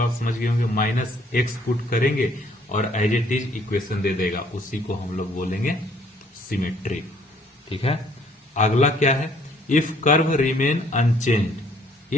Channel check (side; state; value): both; normal; correlation 0.62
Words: समझ गए होंगे, -x पुट करेंगे और एज इट इज इक्वेशन दे देगा, उसी को हम लोग बोलेंगे सिमेट्रिक। ठीक है, अगला क्या है, if curve remain